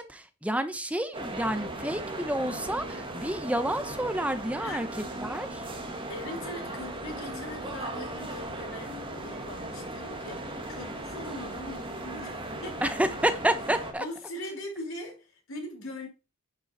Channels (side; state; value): both; normal; correlation 0.63